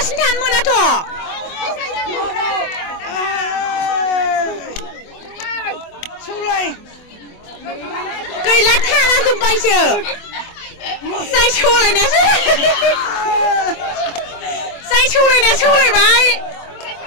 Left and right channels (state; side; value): late; right; 24 ms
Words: थानो मोनाथ' सौलाय गैला थाला जोब्बायसो जाय सौलायनायासो जाय सौलायनाया सौलायबाय